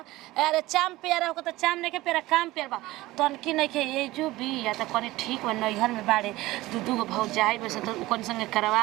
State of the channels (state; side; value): quieter; left; 18.3 dB